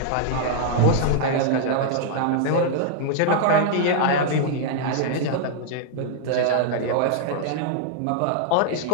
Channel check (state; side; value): different; both; correlation -0.01